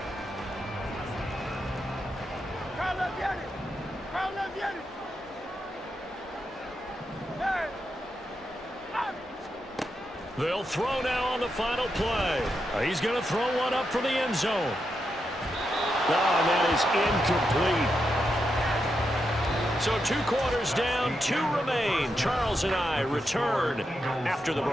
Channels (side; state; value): both; normal; correlation 0.85